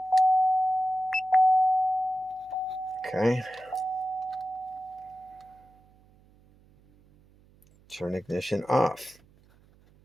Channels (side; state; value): right; noise; hum, 29 dB below the sound